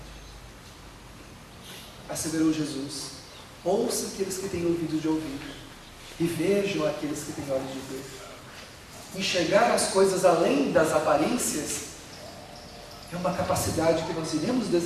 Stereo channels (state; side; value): identical; both; correlation 1.00